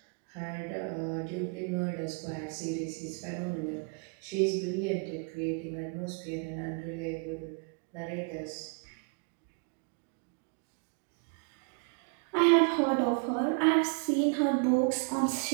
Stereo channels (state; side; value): quieter; left; 35.2 dB